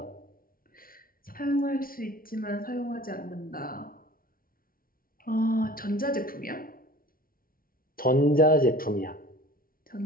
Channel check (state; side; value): late; right; 0.42 ms